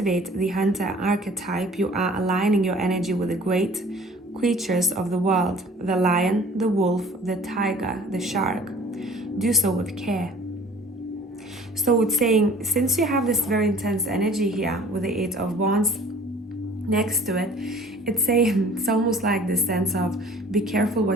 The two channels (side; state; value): both; normal; correlation 0.50